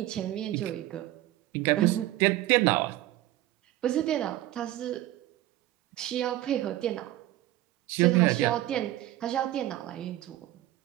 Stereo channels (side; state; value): left; quieter; 15.1 dB